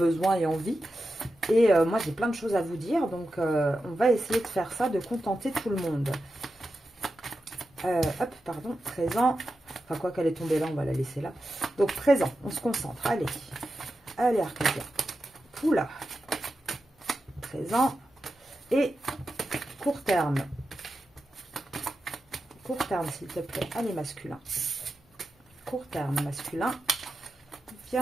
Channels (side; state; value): both; normal; correlation 0.90